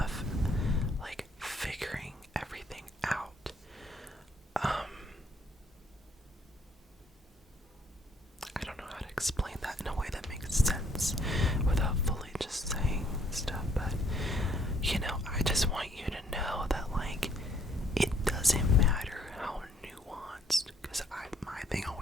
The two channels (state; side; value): normal; both; correlation 0.65